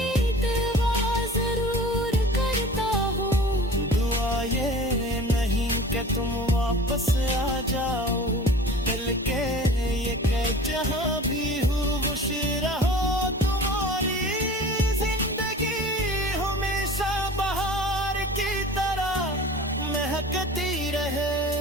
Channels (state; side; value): normal; both; correlation 0.41